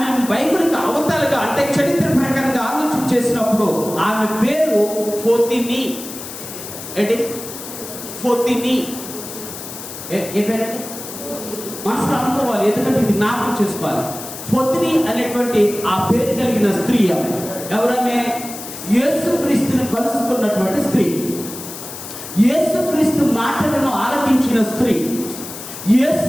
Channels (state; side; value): noise; left; hiss, 11 dB below the sound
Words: బైబిల్కి అవతలుగా అంటే చరిత్ర ప్రకారంగా ఆలోచన చేసినప్పుడు ఆమె పేరు ఫోతిని. ఏంటి ఫోతిని? ఏ పేరంటే మనసులో అనుకోవాలి, ఎందుకంటే ఇది జ్ఞాపకం చేసుకోవాలి. ఫోతిని అనేటువంటి ఆ పేరు కలిగిన స్త్రీ ఆమె. ఎవరమే? యేసుక్రీస్తుని కలుసుకున్నటువంటి స్త్రీ, యేసుక్రీస్తు మాటలను ఆలకించిన స్త్రీ, యేసు